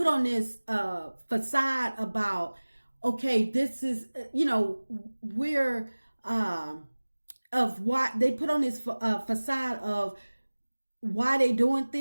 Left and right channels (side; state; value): both; inverted; correlation -1.00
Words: on this facade about, okay, this is, we're of why they put on this facade of why they doing